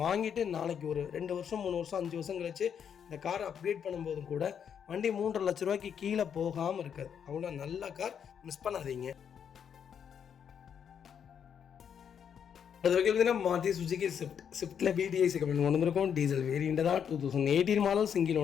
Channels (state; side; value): quieter; right; 7.9 dB